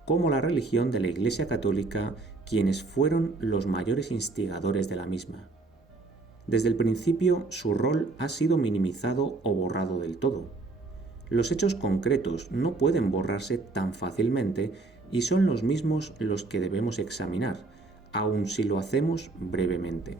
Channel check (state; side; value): quieter; left; 3.5 dB